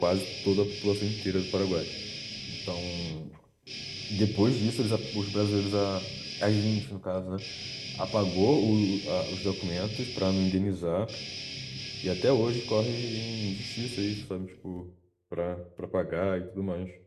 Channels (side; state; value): both; identical; correlation 1.00